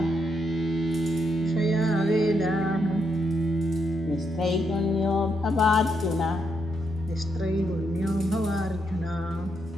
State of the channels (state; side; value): normal; both; correlation 0.79